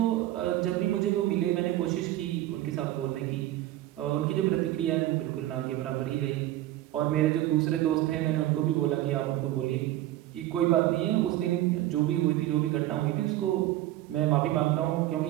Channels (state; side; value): quieter; left; 14.8 dB